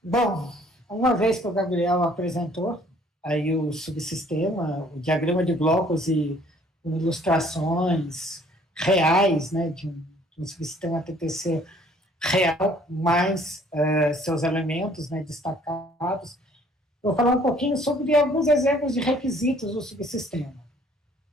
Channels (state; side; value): normal; both; correlation 0.58